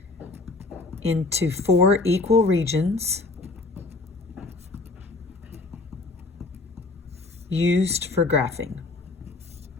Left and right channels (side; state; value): right; quieter; 3.4 dB